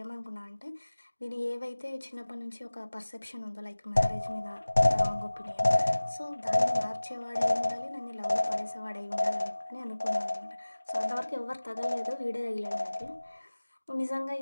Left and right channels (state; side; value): inverted; both; correlation -1.00